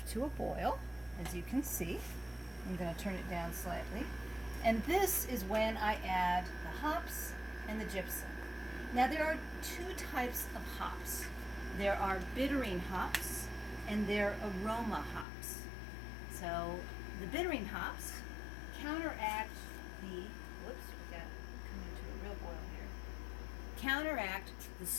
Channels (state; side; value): drops out; right; at 15.2 s